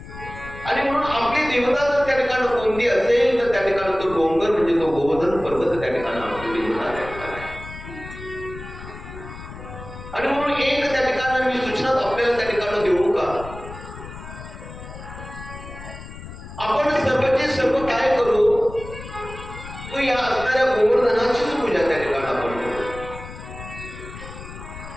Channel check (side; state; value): left; noise; rumble, 13 dB below the sound